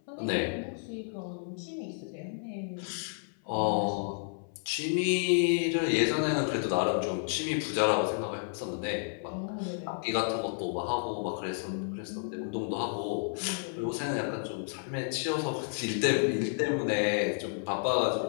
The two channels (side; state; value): right; silent; 57 dB below the other